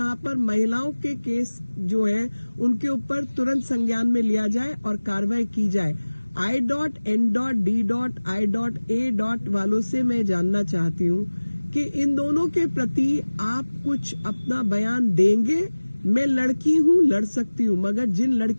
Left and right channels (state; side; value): inverted; both; correlation -1.00